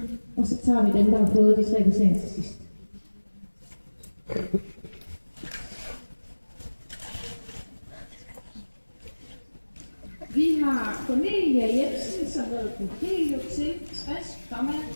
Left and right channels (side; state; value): both; inverted; correlation -1.00